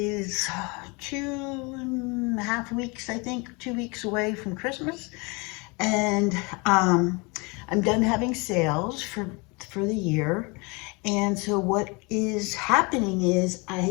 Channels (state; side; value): quieter; right; 28.7 dB